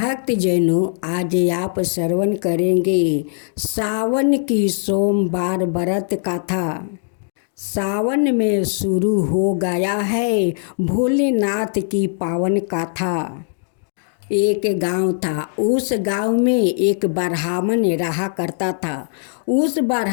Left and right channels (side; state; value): right; silent; digital silence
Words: जैनों, आज आप श्रवण करेंगे सावन की सोमवार व्रत कथा। सावन में शुरू हो गया है भोलेनाथ की पावन कथा। एक गांव था, उस गांव में एक ब्राह्मण रहा करता था। उस